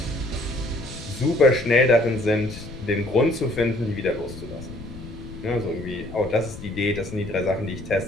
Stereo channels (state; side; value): noise; left; rumble, 13 dB below the sound